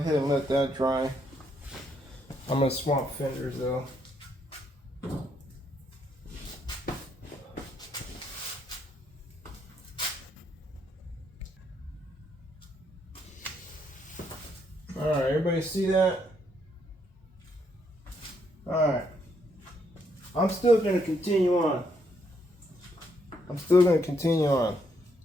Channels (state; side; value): normal; both; correlation 0.74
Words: and let that dry. I'm gonna swap fenders though. Alright, everybody see that? Alright. I'm still gonna continue on.